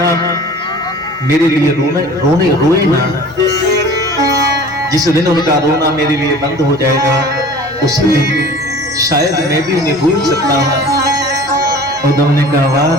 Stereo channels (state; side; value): normal; both; correlation 0.44